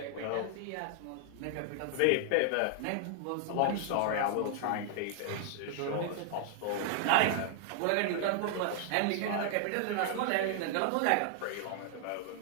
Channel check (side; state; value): both; different; correlation 0.00